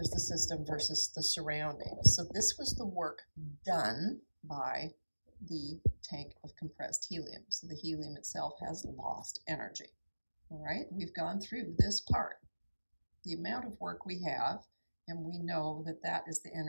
the system versus the surroundings. So this was the work done by the tank of compressed helium. So the helium itself has lost energy. All right, we've gone through this part. The amount of work we have, and we know that that is the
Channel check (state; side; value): inverted; both; correlation -1.00